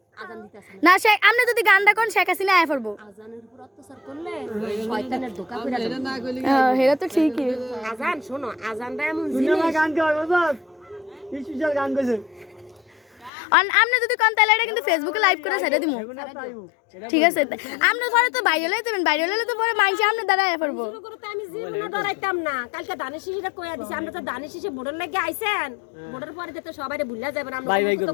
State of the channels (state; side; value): drops out; right; at 13.3 s